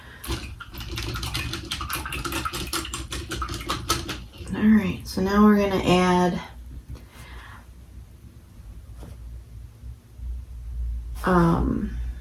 alright, so now we're going to add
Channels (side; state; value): both; identical; correlation 1.00